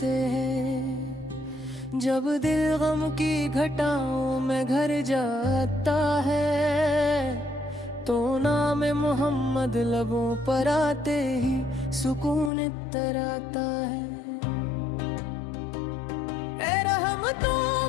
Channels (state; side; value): drops out; right; at 12.5 s